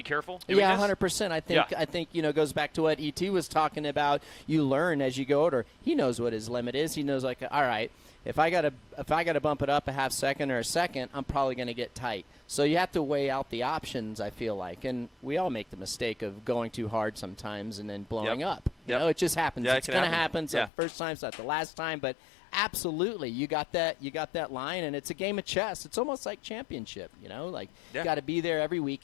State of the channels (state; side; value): drops out; right; at 20.7 s